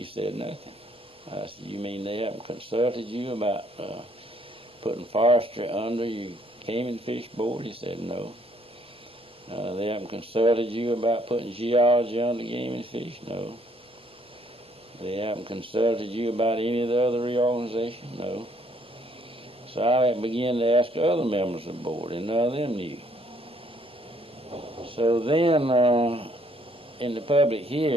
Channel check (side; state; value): both; normal; correlation 0.65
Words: said nothing. I said, you mean they haven't consulted you about putting forestry under your Game and Fish Board? He said no. They haven't consulted you about putting geology under Game and Fish? No. They haven't consulted you about any of the other reorganization? No. So I began to ask other members of the board, and none of them knew. So then, in the public